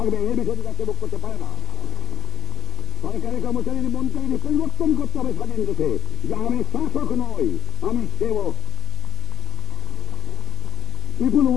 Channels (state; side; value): quieter; right; 10.1 dB